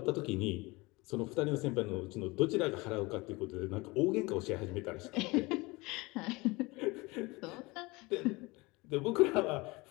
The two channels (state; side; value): quieter; right; 23.7 dB